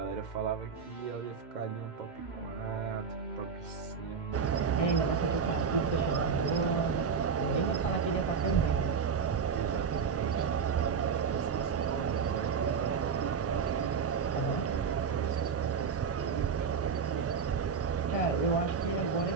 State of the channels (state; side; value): quieter; left; 6.1 dB